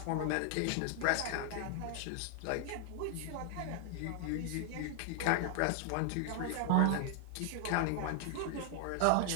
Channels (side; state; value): both; different; correlation 0.00